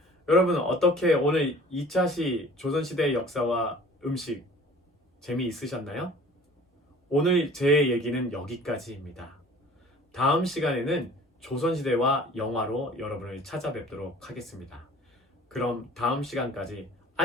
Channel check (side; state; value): both; normal; correlation 0.48